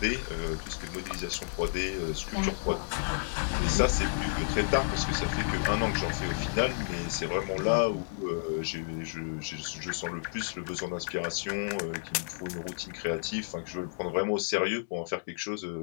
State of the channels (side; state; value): right; silent; digital silence